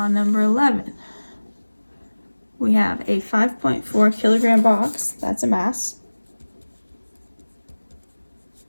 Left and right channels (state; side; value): inverted; both; correlation -1.00